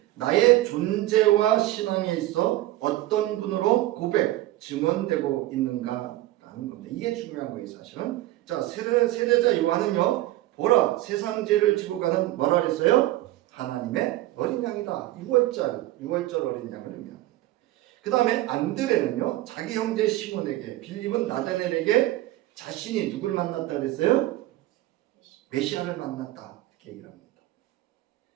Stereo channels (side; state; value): left; quieter; 16.3 dB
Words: 나의 존재와 신앙에 있어 어떤 분으로 고백, 증언되고 있는가 하는 겁니다. 이게 중요한 거예요, 사실은. 자, 세례자 요한은요, 보라, 세상 죄를 지고 가는 뭐라 그랬어요? 하나님의 어린 양이다. 6월절 어린 양을 의미합니다. 그 다음에 안드레는요, 자기 형제 시몬에게, 빌립은 나다넬에게 자신이 누구를 만났다 그랬어요? 메시아를 만났다. 이렇게 얘기를 합니다.